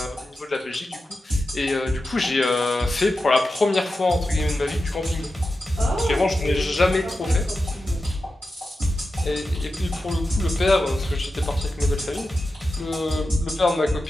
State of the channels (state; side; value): normal; both; correlation 0.91